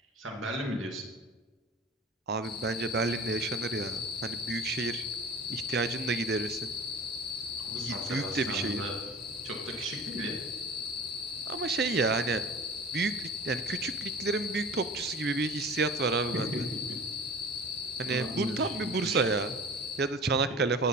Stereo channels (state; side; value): normal; both; correlation 0.39